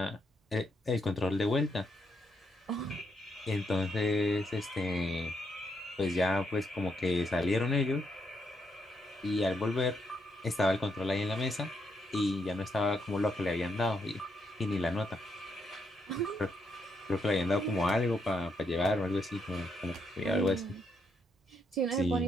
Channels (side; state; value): both; normal; correlation 0.78